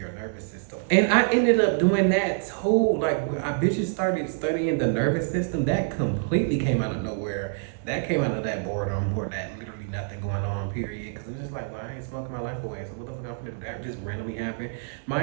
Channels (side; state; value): left; silent; digital silence